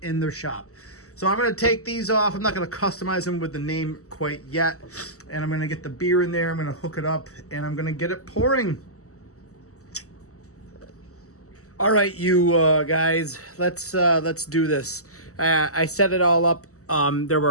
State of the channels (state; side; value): late; right; 0.65 ms